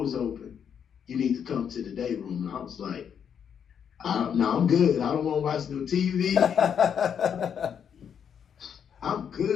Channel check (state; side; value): quieter; right; 7.9 dB